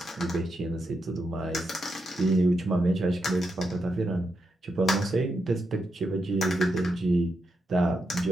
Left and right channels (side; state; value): both; normal; correlation 0.84